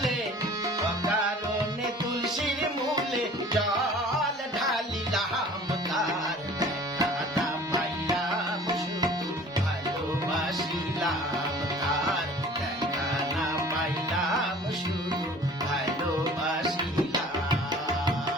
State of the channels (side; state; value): both; normal; correlation 0.47